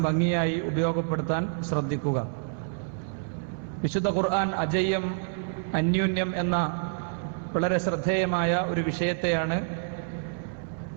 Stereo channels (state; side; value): silent; left; 59 dB below the other